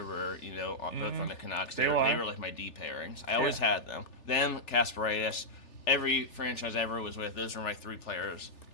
were, both on the Canucks. They were like my D pairings. I always had them. Them, Kasparaitis, every franchise I ever was with, those were my 3 players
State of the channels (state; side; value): late; right; 3.4 ms